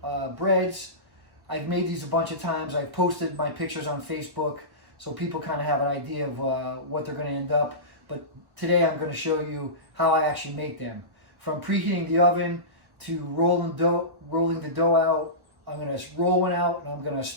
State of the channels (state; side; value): late; left; 1.1 ms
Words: breads. I've made these a bunch of times. I've posted my pictures on Facebook so people kind of have an idea of what they're going to end up. But today I'm going to show you how I actually make them. From preheating the oven to rolling the dough out. I'm going to roll one out and I'm going to